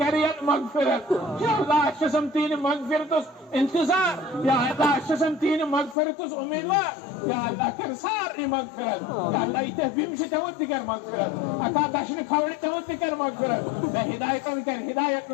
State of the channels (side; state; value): right; drops out; at 6.0 s